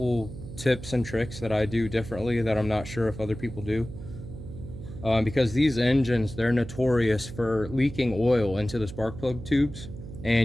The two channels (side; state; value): right; noise; hum, 11 dB below the sound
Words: tips and tricks that I do differently that I'm not sure if other people do. Because these engines, they're notorious for leaking oil into the spark plug tubes,